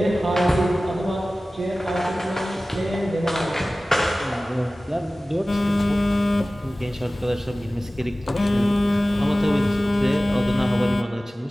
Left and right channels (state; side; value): normal; both; correlation 0.97